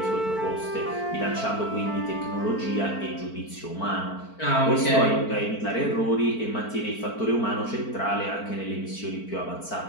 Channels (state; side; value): late; right; 4.5 ms